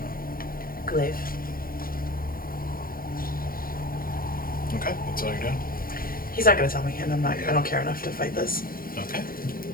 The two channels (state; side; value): late; right; 0.42 ms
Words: Glaive. Okay, that's all you're doing? He's not gonna tell me, and I don't care enough to fight this. Okay.